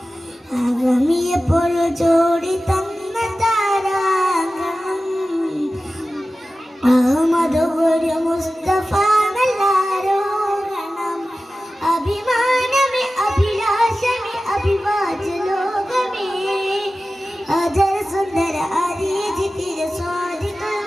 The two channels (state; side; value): normal; both; correlation 0.95